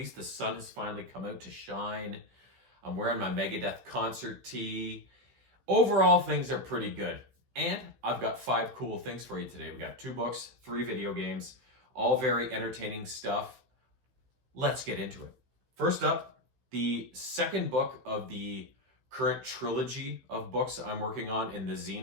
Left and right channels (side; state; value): left; late; 16 ms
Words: the sun has finally come out to shine. I'm wearing my Megadeth concert tee. Overall, things are pretty good. And I've got 5 cool things for you today. We got 2 books, 3 video games, all very entertaining stuff. Let's get into it. First up, the second book of the current trilogy of books I'm working on in the